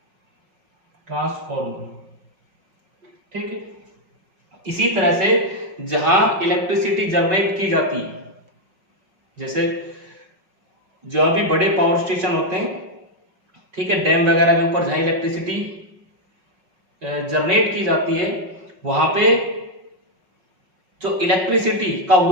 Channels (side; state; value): left; late; 5.4 ms